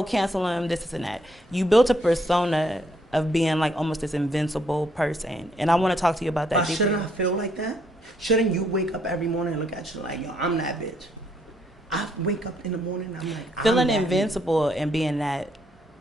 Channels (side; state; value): both; normal; correlation 0.71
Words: cancel him, this and that. You built a persona of being like almost this invincible person. And I want to talk to you about that. Shouldn't I feel like that? Shouldn't you wake up every morning and look at you like, yo, I'm that bitch? I wake up in the morning, I'm like, feeling invincible and being that